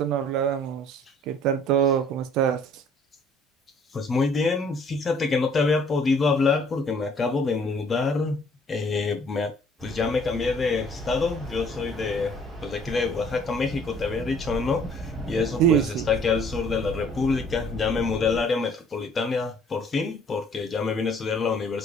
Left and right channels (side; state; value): both; normal; correlation 0.57